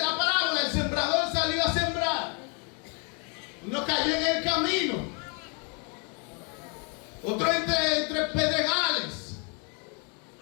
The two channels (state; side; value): quieter; right; 36.2 dB